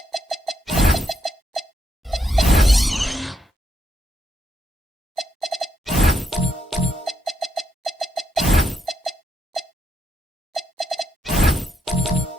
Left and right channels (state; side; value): normal; both; correlation 0.78